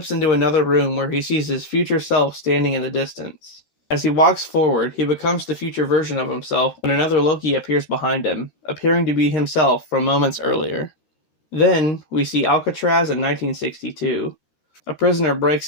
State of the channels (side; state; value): right; late; 13 ms